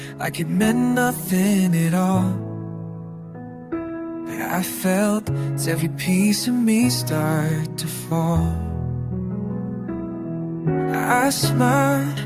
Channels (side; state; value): both; identical; correlation 1.00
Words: like it meant nothing at all, but I felt every piece of me start to fall. I smiled